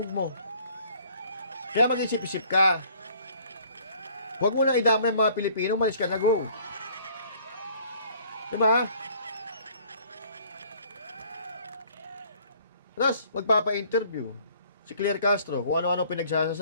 mo. Kaya mag-isip-isip ka. Huwag mo na idamay ang mga Pilipino, malis ka na, go. Diba? Tapos, magpapa-interview si Claire Castro kung ano-ano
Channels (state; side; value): inverted; both; correlation -0.57